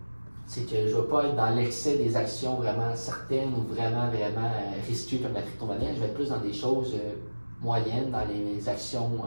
C'est que je ne vais pas être dans l'excès des actions vraiment certaines ou vraiment risquées comme la crypto-monnaie. Je vais être plus dans des choses moyennes, dans les actions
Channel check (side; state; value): both; inverted; correlation -1.00